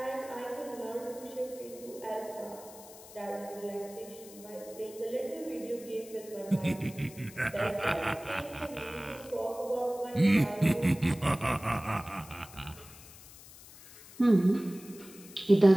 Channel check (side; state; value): left; noise; hiss, 19 dB below the sound